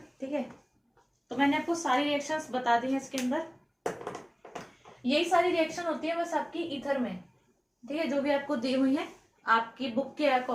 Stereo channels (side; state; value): both; identical; correlation 1.00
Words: ठीक है। तो मैंने आपको सारी रिएक्शंस बता दी हैं इसके अंदर, यही सारी रिएक्शन होती है बस आपकी ईथर में, ठीक है, जो भी आपको दी हुई है आपकी बुक के